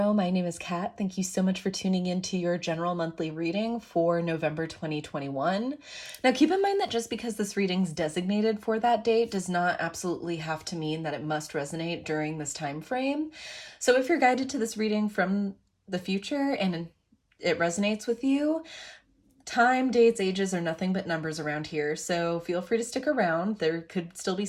My name is Kat. Thank you so much for tuning in to your general monthly reading for November 2021. Now keep in mind that just because this reading's designated for that date does not absolutely have to mean that it must resonate during this time frame. So if you're guided to this reading from the future and it resonates with you, time, dates, ages are nothing but numbers around here, so feel free to stick around. There could still be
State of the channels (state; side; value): identical; both; correlation 1.00